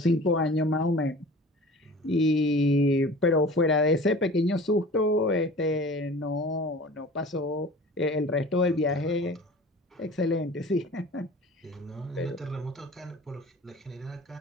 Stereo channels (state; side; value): normal; both; correlation 0.42